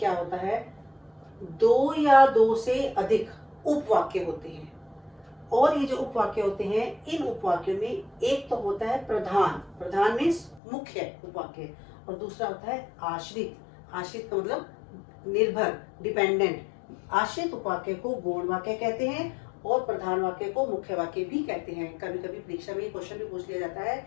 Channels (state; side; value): drops out; right; at 10.6 s